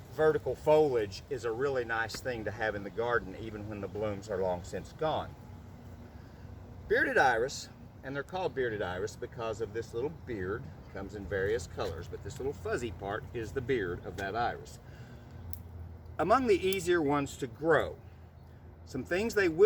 vertical foliage is a really nice thing to have in the garden, even when the blooms are long since gone. Bearded iris, and they're called bearded iris because of this little beard, comes in various colors, but this little fuzzy part is the beard of that iris. Among the easier ones to grow, some things they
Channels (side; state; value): both; identical; correlation 1.00